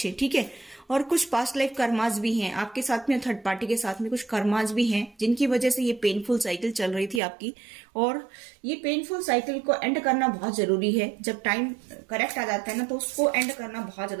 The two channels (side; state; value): left; drops out; at 7.2 s